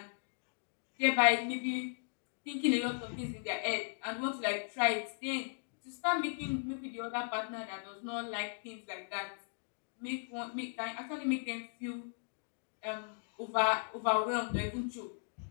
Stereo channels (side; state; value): right; silent; digital silence